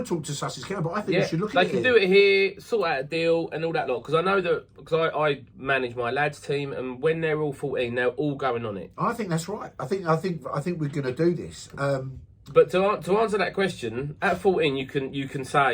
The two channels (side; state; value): both; identical; correlation 1.00